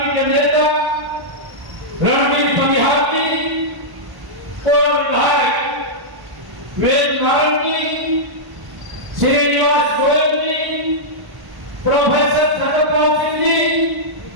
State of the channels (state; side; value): late; left; 1.1 ms